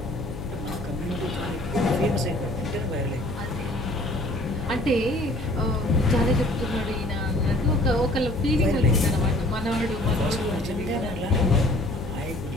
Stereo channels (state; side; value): noise; left; hum, 10 dB below the sound